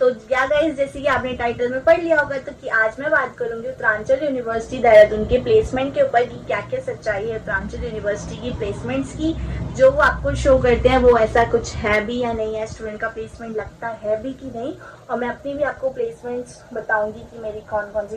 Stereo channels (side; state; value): both; identical; correlation 1.00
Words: तो या गाइस, जैसे कि आपने टाइटल में पढ़ लिया होगा तो कि आज मैं बात करूंगी उत्तरांचल यूनिवर्सिटी देहरादून के प्लेसमेंट के ऊपर कि क्या क्या सच्चाई है उत्तरांचल यूनिवर्सिटी की प्लेसमेंट्स की, जो वो आपको शो करते हैं वो ऐसा कुछ है भी या नहीं है, स्टूडेंट का प्लेसमेंट लगता है भी कि नहीं। और मैं अपनी भी आपको प्लेसमेंट्स बताऊंगी कि मेरी कौन कौन सी